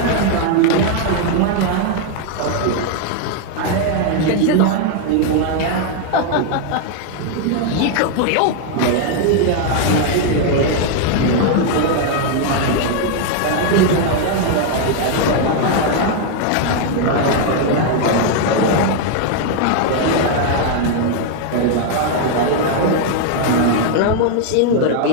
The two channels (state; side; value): different; both; correlation 0.00